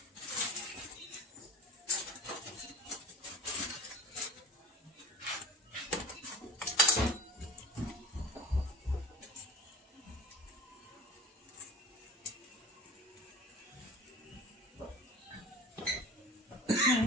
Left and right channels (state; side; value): normal; both; correlation 0.39